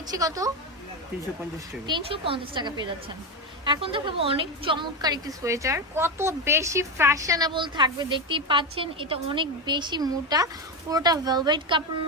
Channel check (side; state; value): both; normal; correlation 0.13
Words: কত? 350 টাকা। 350 টাকা পেয়ে যাচ্ছেন। এখন দেখাবো অনেক চমৎকার একটি সোয়েটার, কত বেশি ফ্যাশনেবল থাকবে দেখতেই পাচ্ছেন। এটা অনেক বেশি মোটা, পুরোটা ভেলভেট কাপড়ের